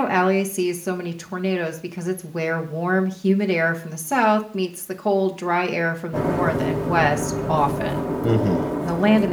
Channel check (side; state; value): both; identical; correlation 1.00